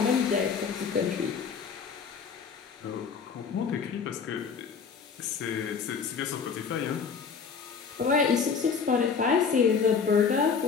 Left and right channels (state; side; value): quieter; right; 5.9 dB